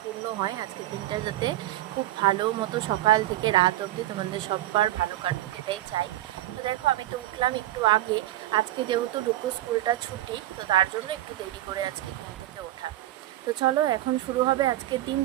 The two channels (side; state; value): left; quieter; 14.7 dB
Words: পূর্ণ হয়। আজকে দিনটা যাতে খুব ভালো মতো সকাল থেকে রাত অবধি তোমাদের সবার ভালো কাটুক, এটাই চাই। তো দেখো, আমি তো উঠলাম একটু আগে। আজকে যেহেতু ডুকু স্কুলটা ছুটি, তো তার জন্য একটু দেরি করে আজকে ঘুম থেকে ওঠা। তো চলো, এখন শুরু হবে আজকের